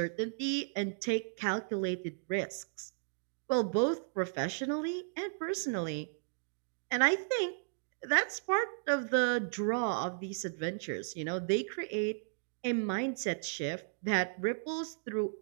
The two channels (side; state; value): left; silent; digital silence